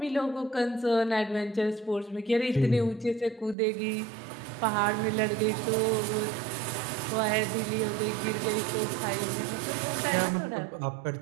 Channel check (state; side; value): drops out; left; at 3.6 s